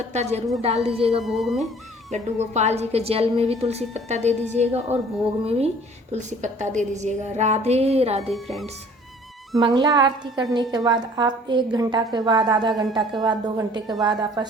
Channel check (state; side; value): normal; both; correlation 0.52